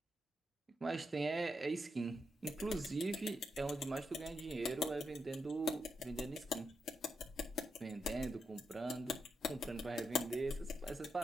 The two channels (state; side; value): normal; both; correlation 0.84